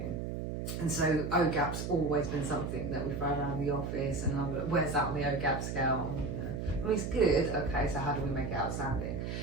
And so OGAP's always been something that we throw around the office, and I'm like, where's that on the OGAP scale? I mean, it's good, okay, so how do we make it outstanding?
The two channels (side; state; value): right; noise; hum, 4 dB below the sound